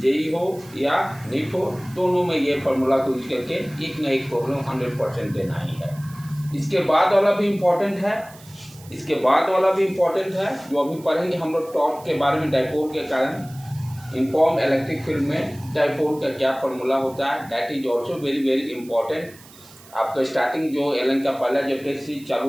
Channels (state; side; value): noise; right; hiss, 22 dB below the sound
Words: हो या नीट हो, दोनों में ये फार्मूला को यूज करके एक ना एक प्रॉब्लम 100% देना ही है। इसके बाद वाला भी इम्पोर्टेंट है, इसके बाद वाला भी इम्पोर्टेंट है जो अभी पढ़ेंगे हम लोग टॉर्क के बारे में, डाइपोल के कारण यूनिफॉर्म इलेक्ट्रिक फील्ड में डाइपोल का क्या फार्मूला होता है, that is also very very important. आपका स्टार्टिंग जो एलन का पहला जब टेस्ट सीरीज